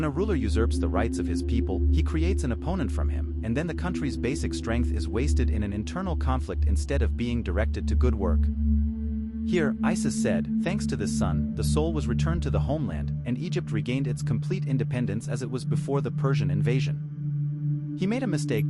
a ruler usurps the rights of his people, he creates an opponent from him, and then the country's basic strength is wasted in an internal conflict instead of being directed to good work. Here, Isis said, thanks to this son, the soul was returned to the homeland, and Egypt regained its complete independence as it was before the Persian invasion. He made a mistake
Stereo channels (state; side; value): identical; both; correlation 1.00